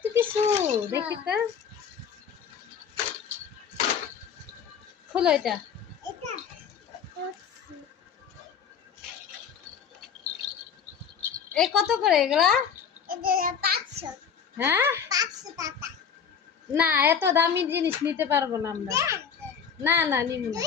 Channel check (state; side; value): quieter; right; 7.2 dB